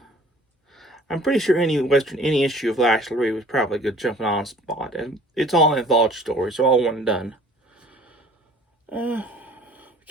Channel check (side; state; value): both; normal; correlation 0.50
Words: I'm pretty sure any issue of Lash LaRue was probably a good jumping on spot, and it's all an anthology story, so all one and done.